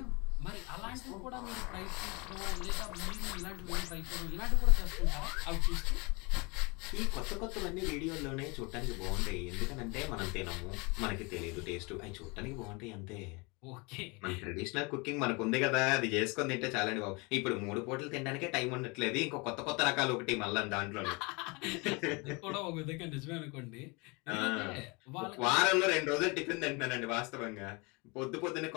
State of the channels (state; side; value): quieter; right; 28.4 dB